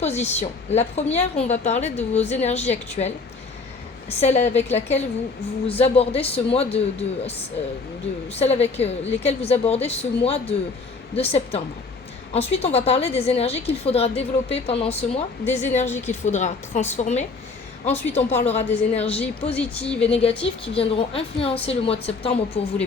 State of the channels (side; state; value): right; quieter; 4.2 dB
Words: La première, on va parler de vos énergies actuelles, celle avec laquelle vous abordez ce mois celle avec lesquelles vous abordez ce mois de septembre. Ensuite, on va parler des énergies qu'il faudra développer pendant ce mois, des énergies qu'il faudra transformer. Ensuite, on parlera des énergies positives et négatives qui viendront influencer le mois de septembre pour vous les